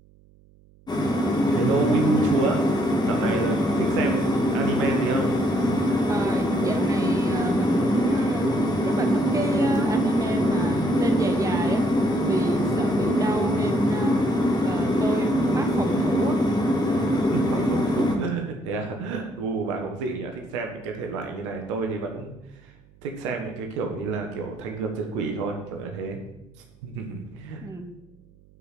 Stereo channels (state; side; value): noise; right; hum, 28 dB below the sound